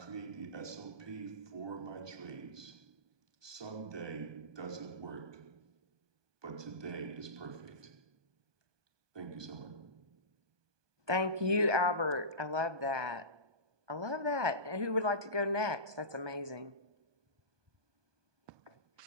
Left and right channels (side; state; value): left; late; 1.2 ms